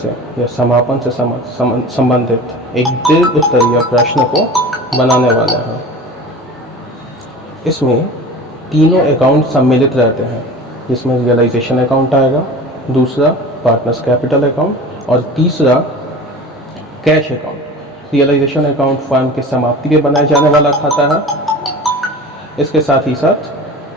या समापन से संबंधित एक दीर्घ उत्तरीय प्रश्न को बनाने वाले हैं। इसमें तीनों अकाउंट सम्मिलित रहते हैं, जिसमें रियलाइजेशन अकाउंट आएगा, दूसरा पार्टनर्स कैपिटल अकाउंट और तीसरा cash account. Realisation account firm के समाप्ति पे बनाए जाने वाला खाता है। इसके साथ ही साथ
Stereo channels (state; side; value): normal; both; correlation 0.36